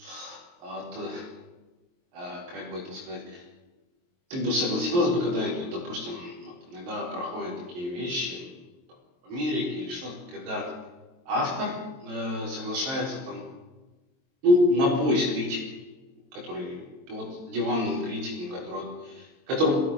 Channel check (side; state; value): left; late; 23 ms